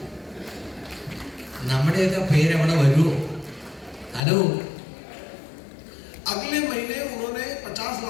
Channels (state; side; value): drops out; right; at 4.2 s